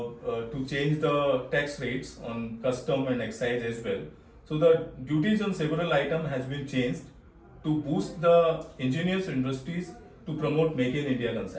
change the tax rates on custom and excise as well. So the duties on several items has been changed to boost the ingenious industries to promote Make in India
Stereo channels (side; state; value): both; identical; correlation 1.00